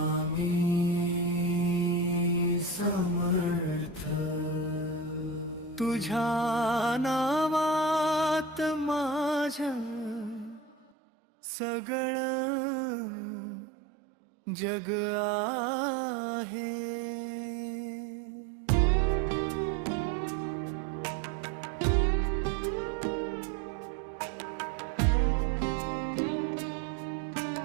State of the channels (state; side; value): drops out; left; at 10.9 s